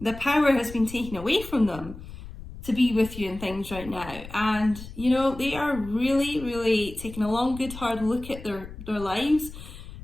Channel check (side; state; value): left; noise; rumble, 14 dB below the sound